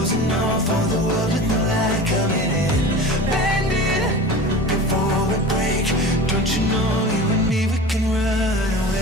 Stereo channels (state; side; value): normal; both; correlation 0.34